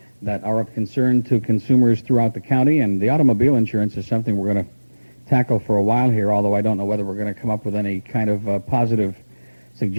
that are of concern to consumers throughout the county, and the automobile insurance is something we're going to tackle for a while here, although I don't know whether we're going to come up with any kind of positive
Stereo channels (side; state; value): both; inverted; correlation -1.00